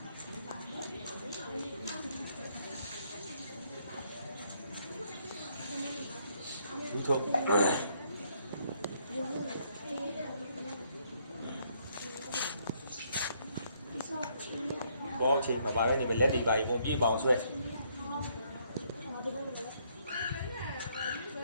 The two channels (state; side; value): inverted; both; correlation -0.70